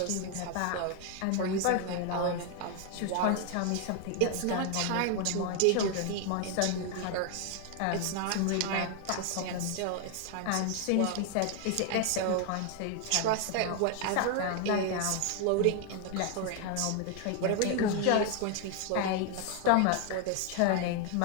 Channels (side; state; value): both; different; correlation 0.01